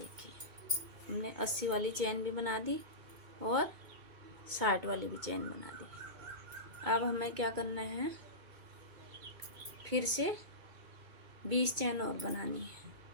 हमने 80 वाली चैन भी बना दी और 60 वाली भी चैन बना दी। अब हमें क्या करना है, फिर से 20 चैन और बनानी है।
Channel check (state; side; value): late; left; 2.2 ms